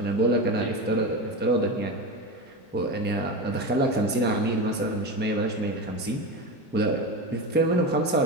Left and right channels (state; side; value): normal; both; correlation 0.21